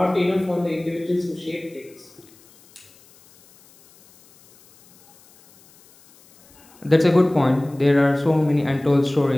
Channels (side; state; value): left; noise; hiss, 28 dB below the sound